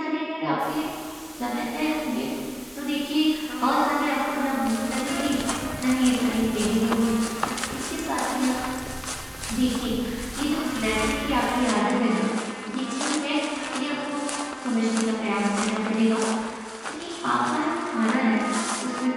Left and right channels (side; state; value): both; identical; correlation 1.00